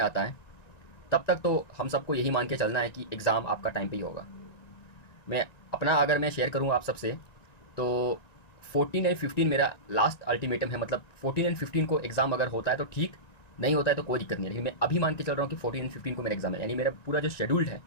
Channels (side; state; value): right; late; 1.9 ms